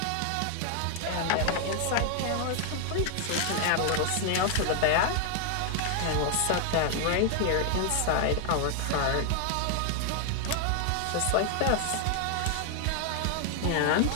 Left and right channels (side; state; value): both; different; correlation 0.00